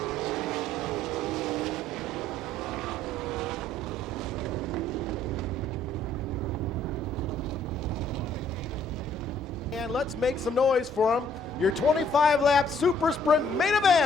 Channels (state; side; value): normal; both; correlation 0.63